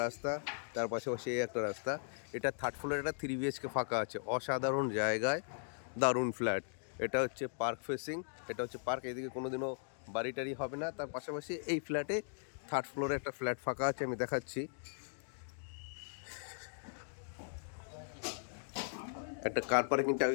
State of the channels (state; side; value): silent; right; digital silence